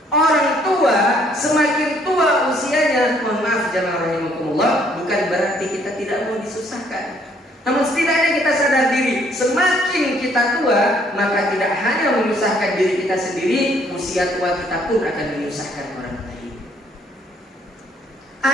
orang tua semakin tua usianya, mohon maaf jemaah rahimakumullah, bukan berarti kita tidak mau disusahkan. Namun setidaknya kita sadar diri, semakin kita tua, maka tidak hanya menyusahkan diri kita sendiri, usia tua kita pun akan menyusahkan orang lain.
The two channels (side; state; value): both; normal; correlation 0.65